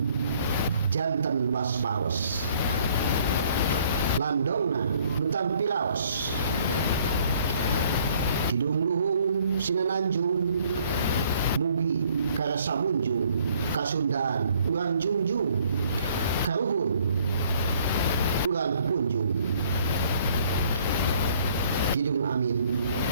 janten waspaos landongna nu tampi raos kidung luhung sinananjung mugi karasa munjung kasundaan urang jungjung karuhun urang punjung kidung amin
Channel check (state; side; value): inverted; both; correlation -0.60